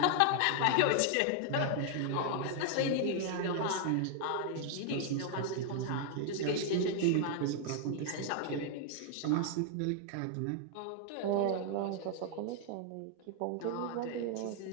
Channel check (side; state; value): both; different; correlation 0.00